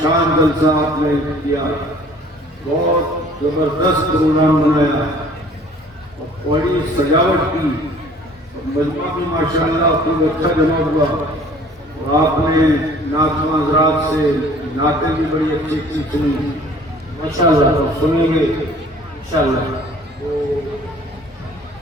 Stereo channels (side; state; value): both; normal; correlation 0.52